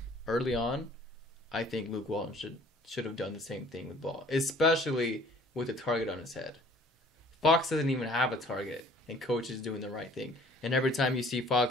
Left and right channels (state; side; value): normal; both; correlation 0.54